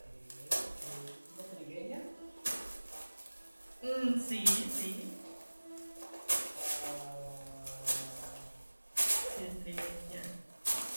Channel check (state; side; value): inverted; both; correlation -1.00